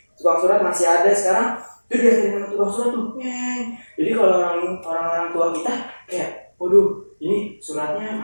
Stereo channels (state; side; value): inverted; both; correlation -1.00